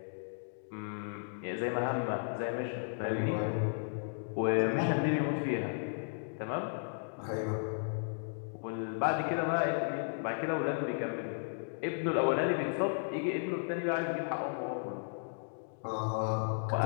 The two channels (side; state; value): right; silent; digital silence